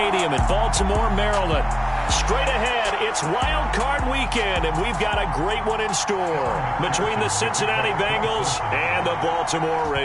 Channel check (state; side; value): identical; both; correlation 1.00